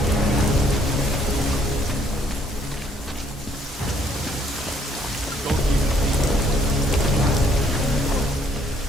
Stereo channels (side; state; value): both; normal; correlation 0.66